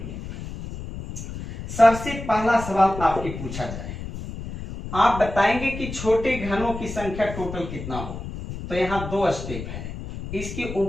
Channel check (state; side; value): noise; left; rumble, 9 dB below the sound